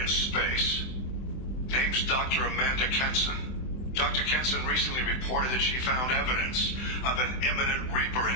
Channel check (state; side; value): late; right; 23 ms